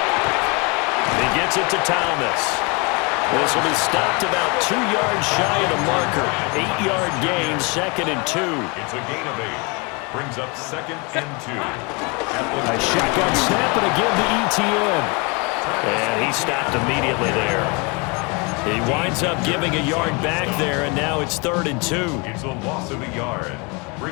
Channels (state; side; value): quieter; right; 29.4 dB